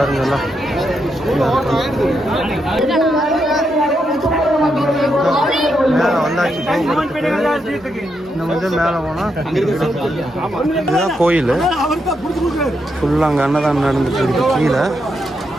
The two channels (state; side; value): normal; both; correlation 0.81